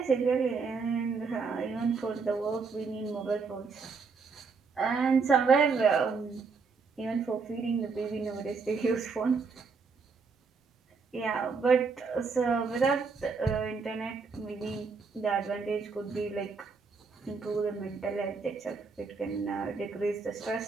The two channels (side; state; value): left; quieter; 4.8 dB